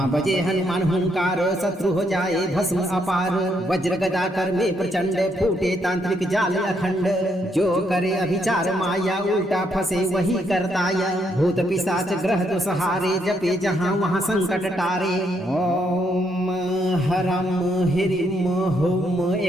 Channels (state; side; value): normal; both; correlation 0.75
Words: बजे हनुमान हुंकार शत्रु हो जाए भस्म अपार। वज्र गदा कर में प्रचंड फूटे तांत्रिक जाल अखंड। जो करे अभिचार माया उल्टा फंसे वही करताया। भूत पिशाच ग्रह तो सहारे जपे जहाँ वहाँ संकट टारे। ओम हरम हिरिम हुम